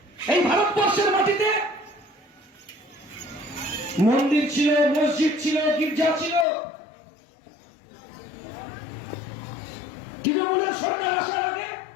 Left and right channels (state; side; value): drops out; right; at 6.5 s